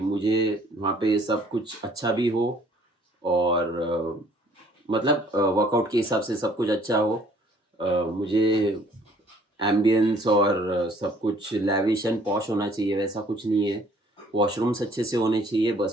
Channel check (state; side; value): normal; both; correlation 0.58